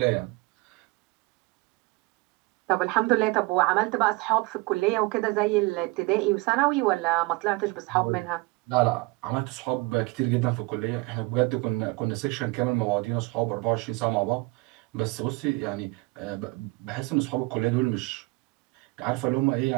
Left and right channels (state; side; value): quieter; left; 24.9 dB